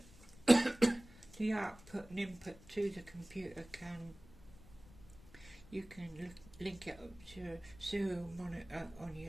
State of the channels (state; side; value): noise; left; rumble, 21 dB below the sound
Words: the output and input to the computer you can link it up to a serial monitor on